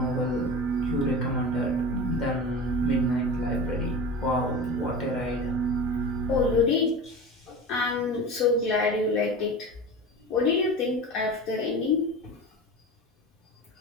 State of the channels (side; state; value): both; normal; correlation 0.31